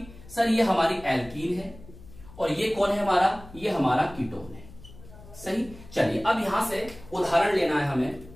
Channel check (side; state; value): left; noise; hum, 19 dB below the sound